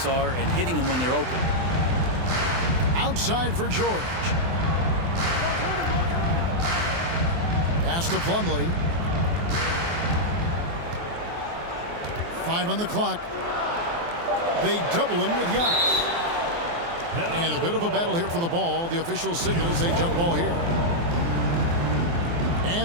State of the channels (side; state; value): left; late; 24 ms